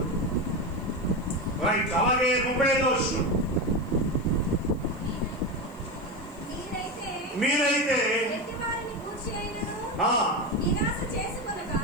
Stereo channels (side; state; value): left; noise; hiss, 28 dB below the sound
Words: రైట్. అలాగే 35వ వచనం, మీరైతే